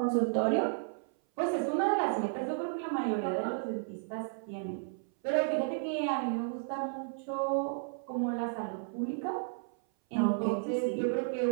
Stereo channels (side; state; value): left; silent; 56 dB below the other